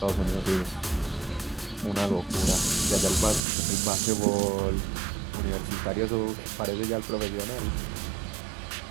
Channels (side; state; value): left; drops out; at 3.4 s